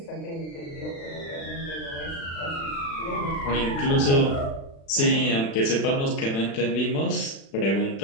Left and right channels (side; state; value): right; late; 36 ms